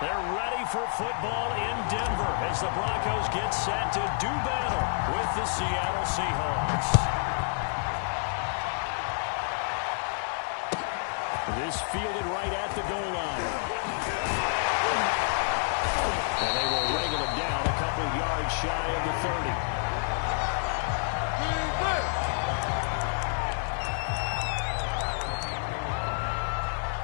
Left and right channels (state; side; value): silent; right; digital silence